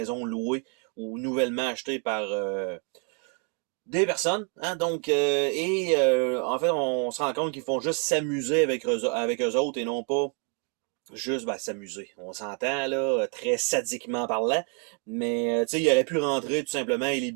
louée ou nouvellement achetée par des personnes, hein, donc, en fait, on se rend compte qu'ils font juste s'amuser avec eux autres et non pas juste s'amuser. On s'entend, là, très sadiquement parlant, mais, tu sais, il aurait pu rentrer tout simplement et les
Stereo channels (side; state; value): left; quieter; 38.0 dB